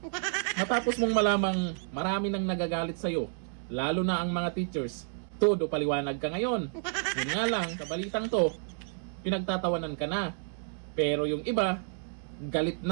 Matapos mong malamang marami nang nagagalit sa'yo, lalo na ang mga teachers, todo paliwanag ka ngayon. Yun nga lang, sa balitang to, pinagtatawanan ka na. Pero yung iba, galit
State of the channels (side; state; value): left; silent; 58 dB below the other